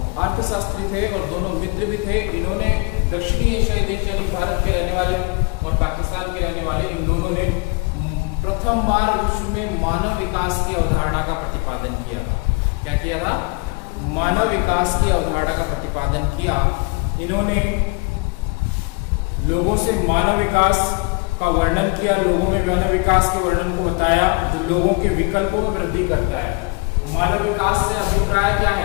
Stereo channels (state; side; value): quieter; right; 29.2 dB